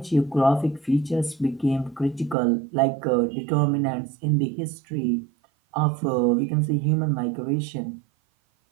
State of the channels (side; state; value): left; drops out; at 2.4 s